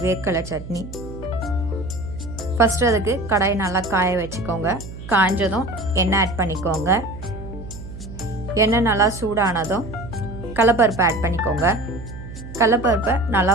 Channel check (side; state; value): right; noise; hum, 12 dB below the sound